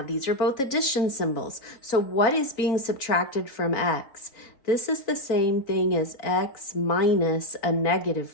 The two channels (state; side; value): late; right; 3.7 ms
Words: these are both addition symbols. So what is being subtracted from x? This is the same thing as x minus a negative